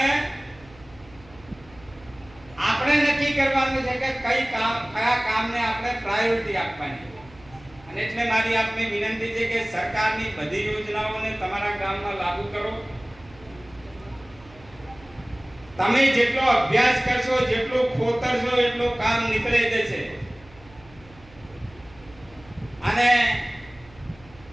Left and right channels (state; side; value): noise; right; hum, 23 dB below the sound